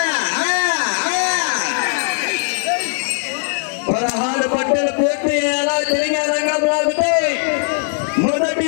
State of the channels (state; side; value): silent; right; digital silence